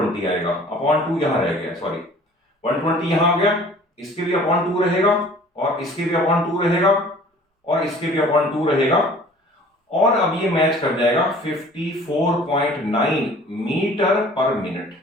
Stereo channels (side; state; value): both; normal; correlation 0.49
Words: आएगा. अपॉन 2 यहां रह गया, सॉरी 120 यहां आ गया, इसके भी अपॉन 2 रहेगा और इसके भी अपॉन 2 रहेगा और इसके भी अपॉन 2 रहेगा, और अब ये मैच कर जाएगा 54.9 मीटर पर मिनट.